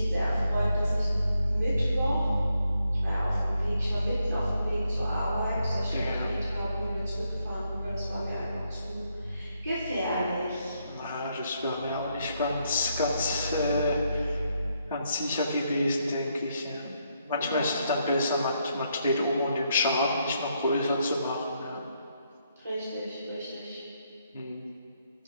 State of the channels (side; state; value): both; inverted; correlation -0.78